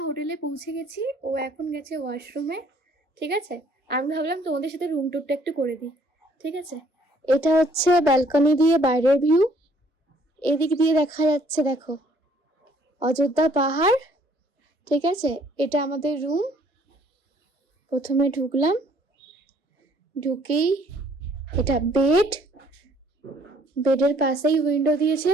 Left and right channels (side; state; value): both; normal; correlation 0.61